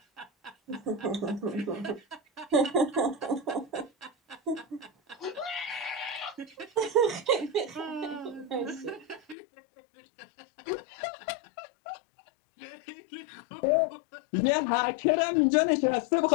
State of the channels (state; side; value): drops out; right; at 9.3 s